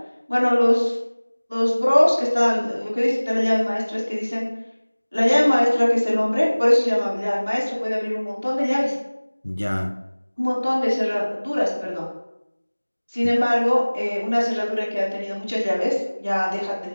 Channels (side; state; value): both; inverted; correlation -1.00